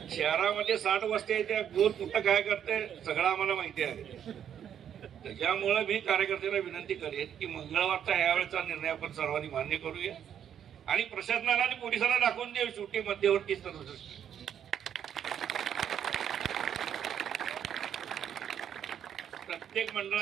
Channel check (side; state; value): left; quieter; 9.2 dB